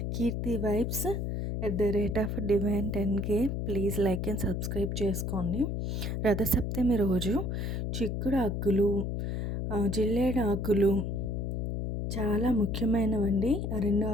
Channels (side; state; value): left; noise; hum, 2 dB below the sound